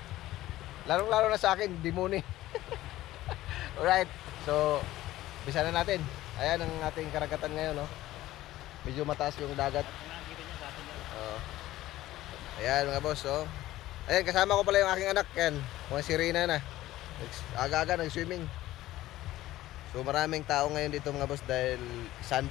Larong-laro na sa akin Dimone. Alright, so bisa na natin. Ayan ang ating karagatan ngayon, no? Medyo mataas yung dagat. Ayan mga boss, oh. Ayan, kasama ko pala yung aking anak. Yan, si Rina na. Aga-aga nag-swimming. So maraming tao ngayon dito mga boss dahil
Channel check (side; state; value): right; quieter; 15.6 dB